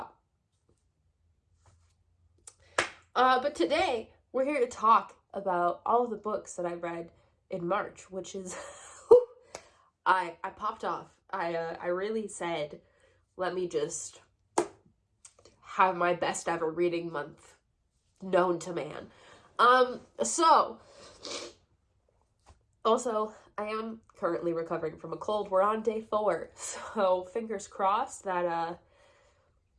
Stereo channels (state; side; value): identical; both; correlation 1.00